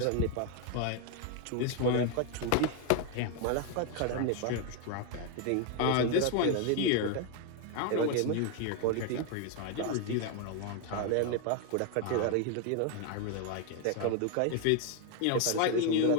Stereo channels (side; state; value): both; different; correlation 0.01